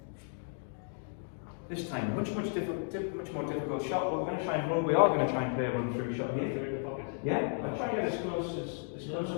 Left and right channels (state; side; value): silent; right; 55 dB below the other